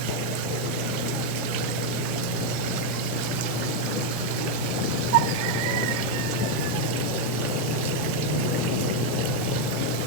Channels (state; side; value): normal; both; correlation 0.02